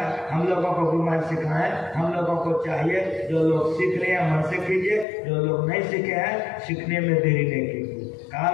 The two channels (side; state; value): right; drops out; at 5.1 s